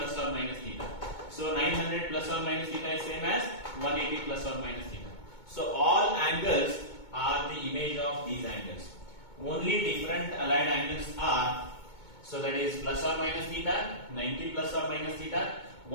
or minus theta. So 900 plus or minus theta is same as 180 plus or minus theta. So all angles are the image of these angles. Only different allied angles are, so that is plus or minus theta, 90 plus or minus theta,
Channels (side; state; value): right; late; 2.2 ms